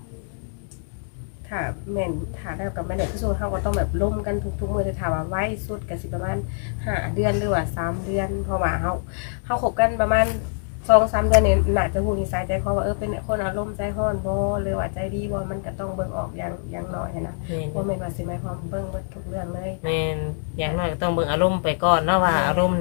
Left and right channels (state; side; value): silent; right; digital silence